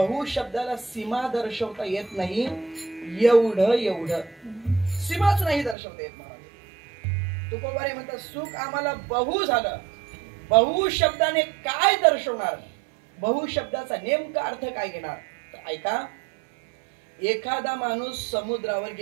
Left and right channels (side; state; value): left; drops out; at 5.8 s